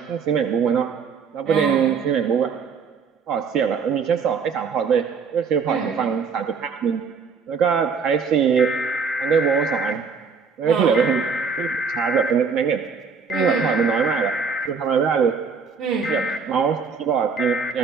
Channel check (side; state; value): left; quieter; 5.6 dB